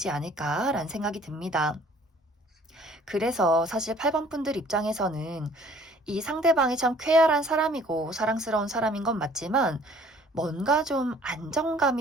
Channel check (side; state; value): both; normal; correlation 0.55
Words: 않을까라는 생각이 듭니다. 그래서 사실 8번 분들 입장에서는 이 상대방이 참 쾌활한 사람이고 사랑스러운 사람인 건 맞지만 뭔가 좀